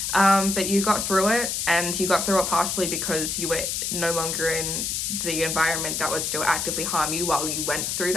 But you got through it, and you got through it partially because you were no longer in the environment that was still actively harm you while you went through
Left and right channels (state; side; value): noise; left; hiss, 1 dB below the sound